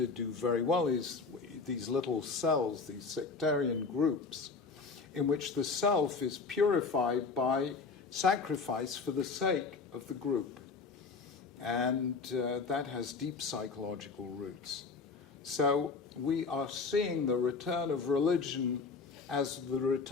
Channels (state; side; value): quieter; right; 4.6 dB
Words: do very well is these little cells, these sectarian groups, in which the self is purified by sacrifice for the sake of the group. And that has deep psychological roots. So we are seeing the return of religion as the